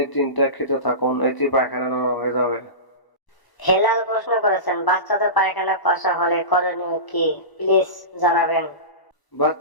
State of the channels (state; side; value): late; right; 1.0 ms